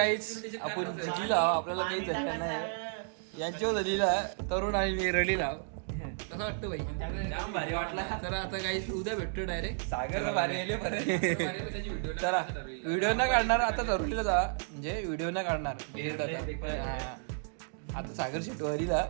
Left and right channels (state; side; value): silent; left; digital silence